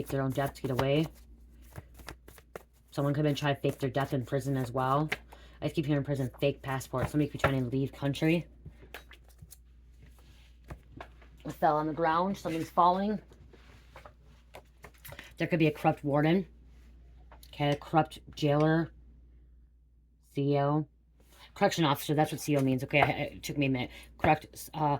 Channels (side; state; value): both; identical; correlation 1.00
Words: their own death to get away. Someone could have been trying to fake their death in prison as well. I keep hearing prison, fake passport. Somebody could be trying to leave country. It fell on the ground. Something's falling. There could be a corrupt warden. Okay, a corrupt jailer. CEO. Correction officer, that's what CEO means. Okay, it took me a minute. Correctional